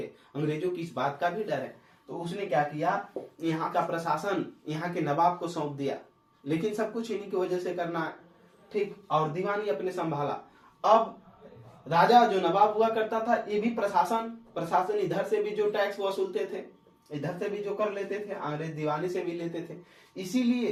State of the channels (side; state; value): both; identical; correlation 1.00